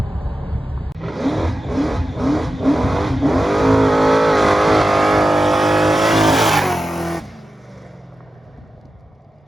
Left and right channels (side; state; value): both; normal; correlation 0.92